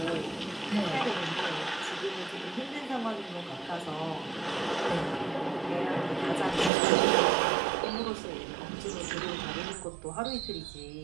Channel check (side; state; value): left; drops out; at 6.7 s